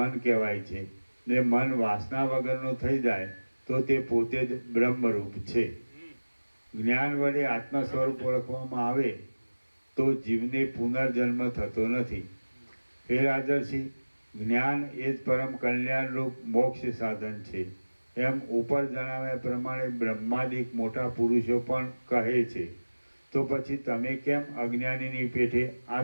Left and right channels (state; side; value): inverted; both; correlation -1.00